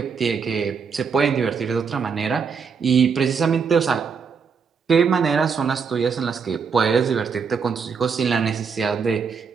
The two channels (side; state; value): left; quieter; 6.0 dB